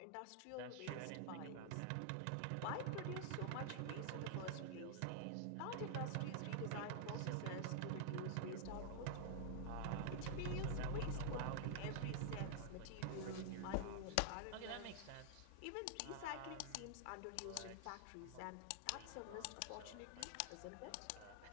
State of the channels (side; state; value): both; different; correlation 0.00